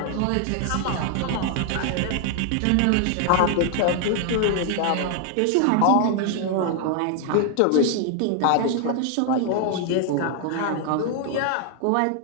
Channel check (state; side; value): different; both; correlation 0.00